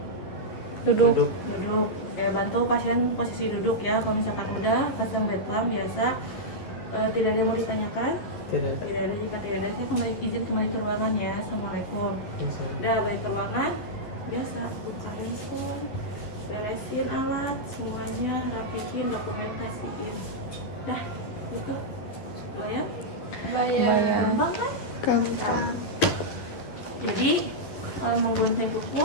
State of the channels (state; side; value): late; right; 11 ms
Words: Duduk. Duduk. Duduk. Ya, bantu pasien posisi duduk ya. Kalau misalkan udah, pasang bed plan biasa. Tidak ada yang mau ditanyakan? Tidak ada. Tidak ada. Jika tidak ada, saya izin kembali ke ruangan ya. Assalamualaikum. Masalah. Udah balik ke ruangan. Biasa buka handphone, beresin alat, semuanya rapiin, dokumen kasihin. Nah, gitu. Bayar? Bayar. Gampang kan? Gampang. Jadi menggunting kuku,